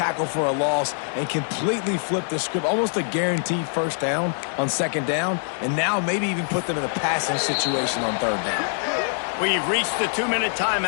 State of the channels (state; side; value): silent; right; digital silence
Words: for a loss and completely flip the script. Almost a guaranteed first down on second down, and now maybe even put them in a passing situation on third down. We've reached the 2-minute